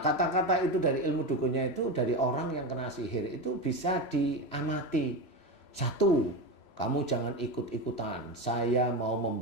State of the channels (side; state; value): right; late; 3.0 ms